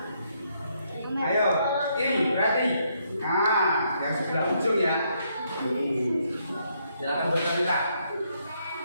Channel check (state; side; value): inverted; both; correlation -0.74